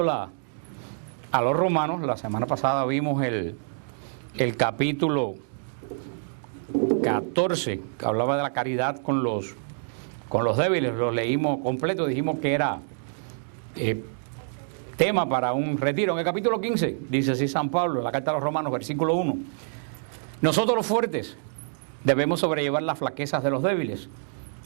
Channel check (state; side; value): silent; left; digital silence